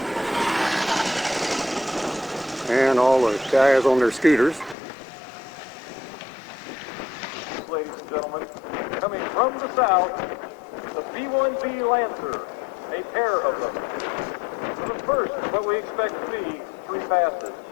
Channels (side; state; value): right; drops out; at 4.8 s